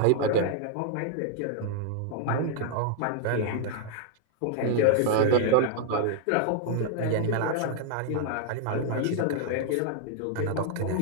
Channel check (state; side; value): different; both; correlation 0.00